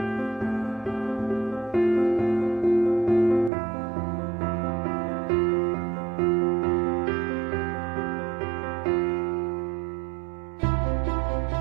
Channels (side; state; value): left; drops out; at 3.5 s